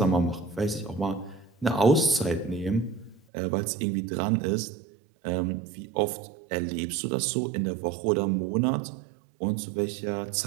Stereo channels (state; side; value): drops out; left; at 3.2 s